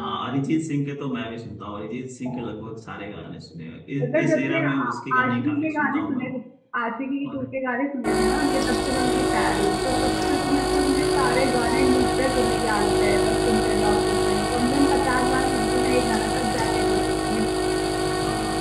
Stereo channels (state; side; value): identical; both; correlation 1.00